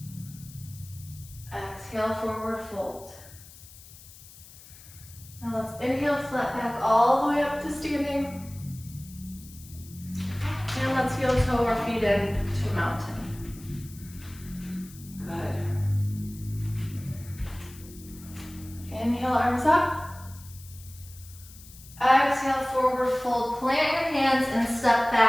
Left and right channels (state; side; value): noise; left; hiss, 19 dB below the sound